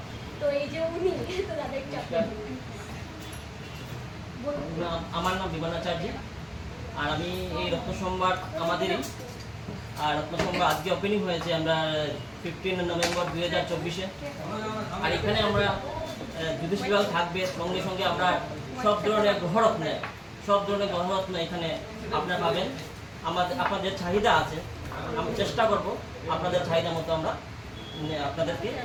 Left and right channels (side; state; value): both; identical; correlation 1.00